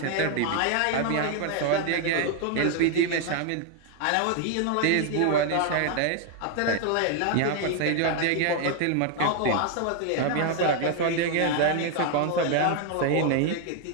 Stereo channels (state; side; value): different; both; correlation 0.00